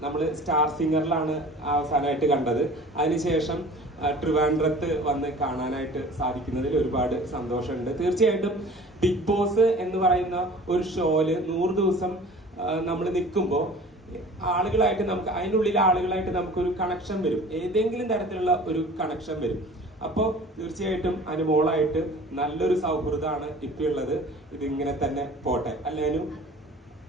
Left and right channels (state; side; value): normal; both; correlation 0.44